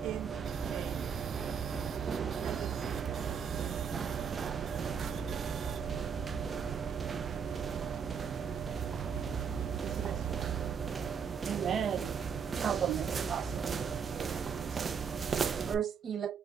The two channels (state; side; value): quieter; left; 6.7 dB